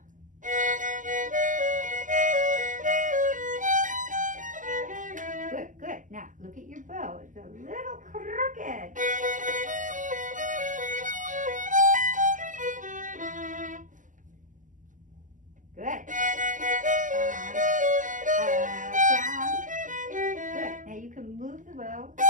Look at your bow. It's a little crooked. Good. Down. Good. Now you can move the bow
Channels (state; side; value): late; left; 0.37 ms